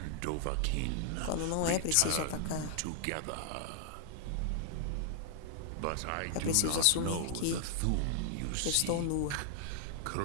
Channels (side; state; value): both; different; correlation -0.01